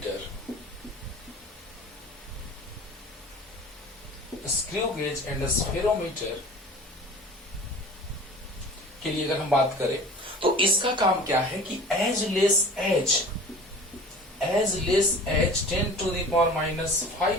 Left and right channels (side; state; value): both; normal; correlation 0.41